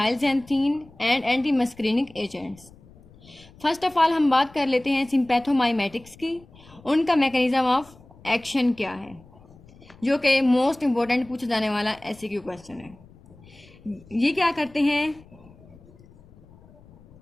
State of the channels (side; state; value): left; noise; rumble, 25 dB below the sound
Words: and anti muscarinic agents. First of all हम बात कर लेते हैं सिम्पैथोमाइमेटिक्स की। उनका मैकेनिज्म ऑफ एक्शन क्या है, जो कि मोस्ट इंपॉर्टेंट पूछा जाने वाला एमसीक्यू क्वेश्चन है। ये क्या करते हैं,